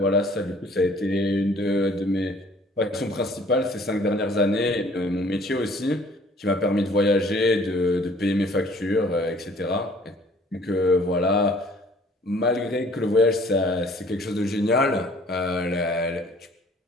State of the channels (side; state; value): both; normal; correlation 0.56